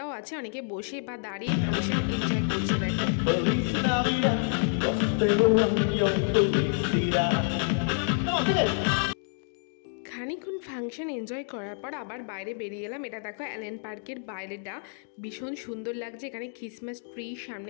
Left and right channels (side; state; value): right; silent; 58 dB below the other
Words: আছে, অনেকে বসে বা দাঁড়িয়ে ফাংশন এনজয় করছে। খানিকক্ষণ ফাংশন এনজয় করার পর আবার বাইরে বেরিয়ে এলাম। এটা দেখো অ্যালেন পার্কের বাইরেটা ভীষণ সুন্দর লাগছে। এখানে ক্রিসমাস ট্রি,